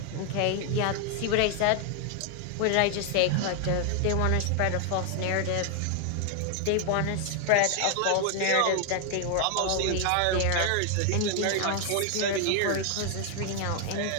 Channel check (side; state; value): both; different; correlation 0.00